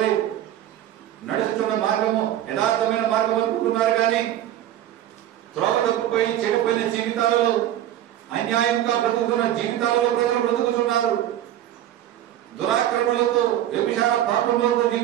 నడుచుతున్న మార్గము యథార్థమైన మార్గం అనుకుంటున్నారు, కానీ త్రోవ తప్పిపోయి చెడిపోయిన జీవితాలలో, అన్యాయంగా బ్రతుకుతున్న జీవితాలలో ప్రజలు బ్రతుకుతున్నారు. దురాక్రమణలతో, వ్యభిచార పాపములతో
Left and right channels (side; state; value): left; quieter; 12.2 dB